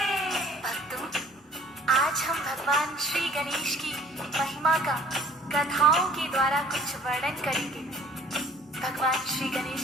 भक्तों, आज हम भगवान श्री गणेश की महिमा का कथाओं के द्वारा कुछ वर्णन करेंगे। भगवान श्री गणेश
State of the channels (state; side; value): normal; both; correlation 0.53